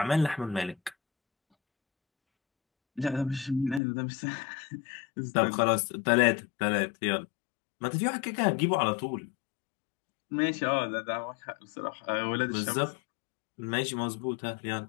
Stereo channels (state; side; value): drops out; right; at 3.8 s